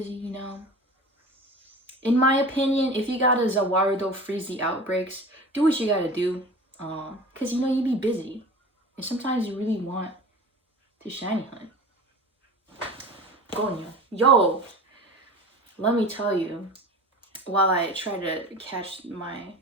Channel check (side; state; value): both; normal; correlation 0.36